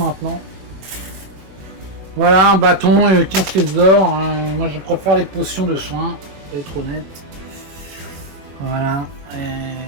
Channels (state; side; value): late; left; 21 ms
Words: Voilà, un bâton et 15 pièces d'or. Hein. Moi, je préfère les potions de soins, pour être honnête. Voilà.